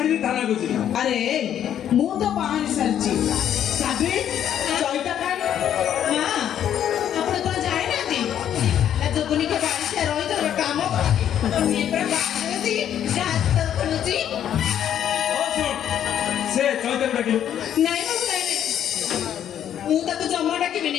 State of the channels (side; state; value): right; quieter; 10.1 dB